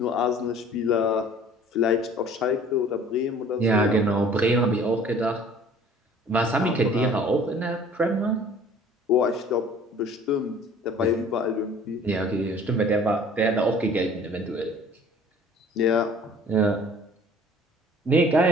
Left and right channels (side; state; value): both; normal; correlation 0.50